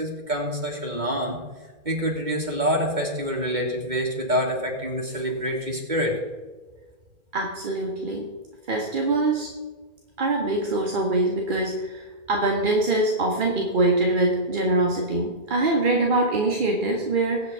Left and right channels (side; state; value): left; late; 2.1 ms